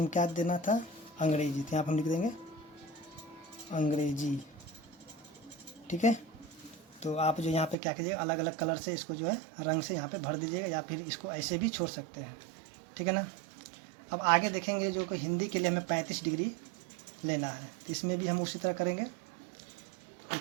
में क्या देना था, अंग्रेजी, तो यहाँ पर हम लिख देंगे अंग्रेजी। ठीक है, तो आप जो यहाँ पे क्या कीजिएगा, अलग अलग कलर से इसको जो है रंग से यहाँ पे भर दीजिएगा, या फिर इसको ऐसे भी छोड़ सकते हैं। ठीक है ना। अब आगे देखेंगे जो कि हिंदी के लिए हमें 35 डिग्री लेना है, तो इसमें भी हम उसी तरह करेंगे।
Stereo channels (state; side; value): drops out; left; at 7.8 s